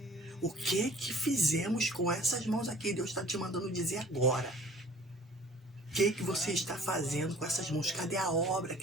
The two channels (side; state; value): both; normal; correlation 0.50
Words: O que fizemos com essas mãos aqui? Deus está te mandando dizer agora. O que você está fazendo com essas mãos? Cadê a obra